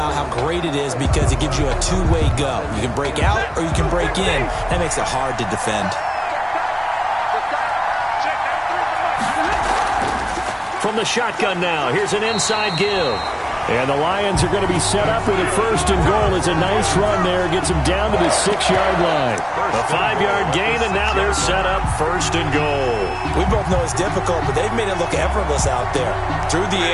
how great it is because it gives you a two-way go. You can break out or you can break in. That makes it hard to defend. From the shotgun now, here's an inside give. And the Lions are going to be set up with a 1st and goal. It's a nice run there. Gets them down to the 6-yard line. A 5-yard gain, and now they're set up 1st and goal. We both know it's difficult, but they've made it look effortless out there. Through the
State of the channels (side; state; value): both; identical; correlation 1.00